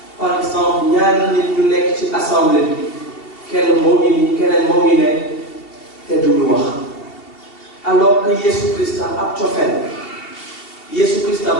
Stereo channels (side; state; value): right; late; 2.7 ms